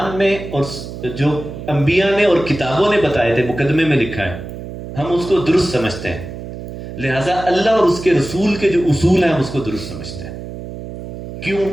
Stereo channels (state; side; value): noise; right; hum, 10 dB below the sound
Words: میں اور جو انبیاء نے اور کتابوں نے بتائے تھے، مقدمے میں لکھا ہے، ہم اس کو درست سمجھتے ہیں. لہذا اللہ اور اس کے رسول کے جو اصول ہیں ہم اس کو درست سمجھتے ہیں. کیوں؟